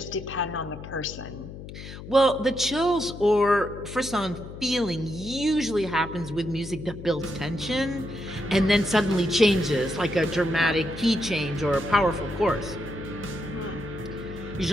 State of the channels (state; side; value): noise; left; hum, 12 dB below the sound